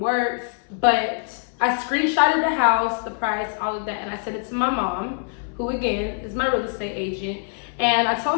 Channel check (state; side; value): silent; right; 63 dB below the other